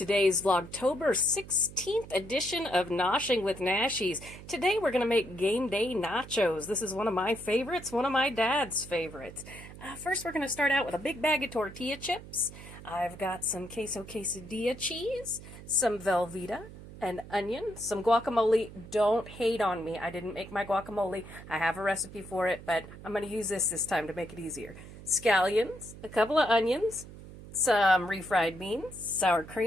Vlogtober 16th edition of Noshing with Nashies. Today we're going to make game day nachos. This is one of my favorites, one of my dad's favorites. First we're going to start out with a big bag of tortilla chips. I've got some queso quesadilla cheese, some Velveeta, an onion, some guacamole. Don't hate on me. I didn't make my guacamole. I have a recipe for it, but I'm going to use this time to make it easier. Scallions, a couple of onions, some refried beans, sour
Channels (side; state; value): right; noise; hum, 15 dB below the sound